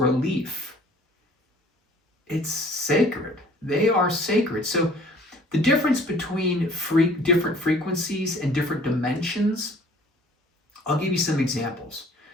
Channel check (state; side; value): normal; both; correlation 0.53